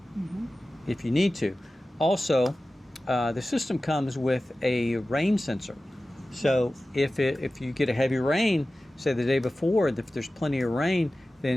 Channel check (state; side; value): normal; both; correlation 0.95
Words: if you need to. Also, the system comes with a rain sensor. So if you get a heavy rain, say the day before, if there's plenty of rain,